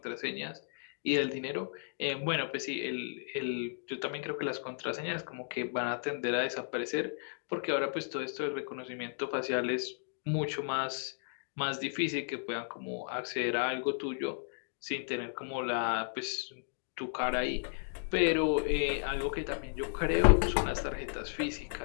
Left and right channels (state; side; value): silent; right; digital silence